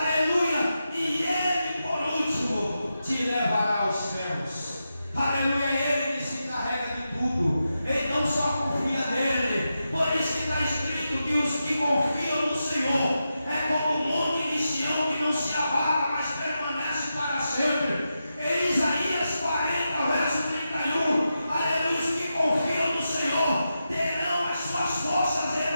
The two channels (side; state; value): both; inverted; correlation -0.89